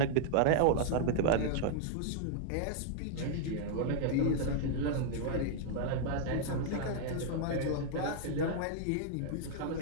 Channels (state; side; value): different; both; correlation 0.00